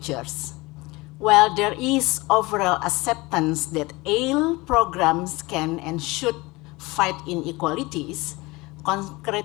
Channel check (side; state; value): right; quieter; 22.8 dB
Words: While there is overall acceptance that ALE programs can and should fight inequalities,